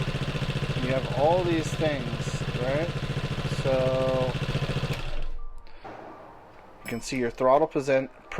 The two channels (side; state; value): both; identical; correlation 1.00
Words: You have all these things, right? So you can see your throttle